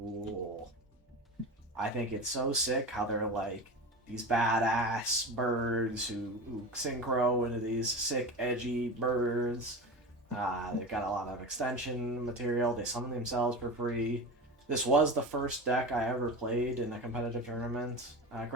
I think it's so sick how they're like these badass birds who synchro into these sick edgy birds. They've got a lot of extension material. They summon themselves for free. This was the first deck I ever played in a competitive tournament.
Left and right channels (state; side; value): normal; both; correlation 0.28